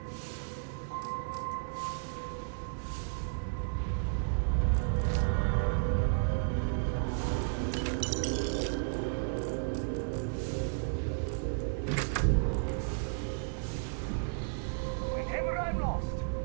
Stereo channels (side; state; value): left; silent; digital silence